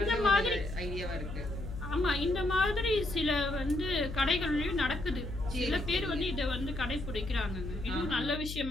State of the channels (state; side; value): noise; left; hum, 8 dB below the sound